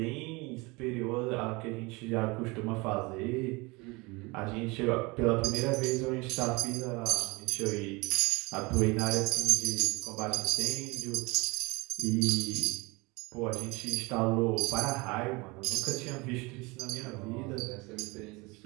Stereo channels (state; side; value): quieter; left; 25.5 dB